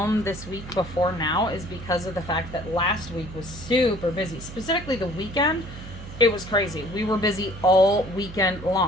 this week before now is because of the fact that last week was super busy. Specifically the weekend, it was crazy. We were busy all weekend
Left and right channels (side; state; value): right; noise; hum, 13 dB below the sound